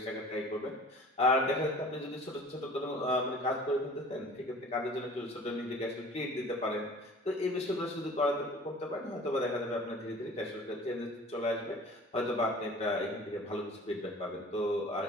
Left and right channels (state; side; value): normal; both; correlation 0.45